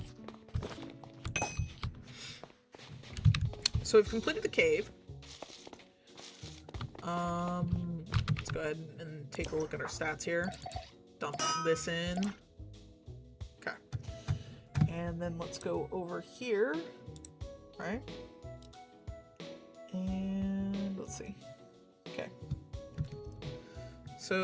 So we've completed the cave. Let's go ahead and take a look at our stats here. Dump this in. Okay. And then let's go over here, right? And let's see. Okay.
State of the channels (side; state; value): both; identical; correlation 1.00